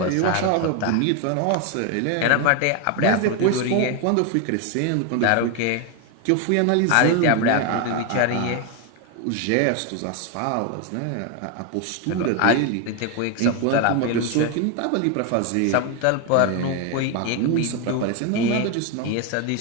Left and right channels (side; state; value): both; different; correlation 0.01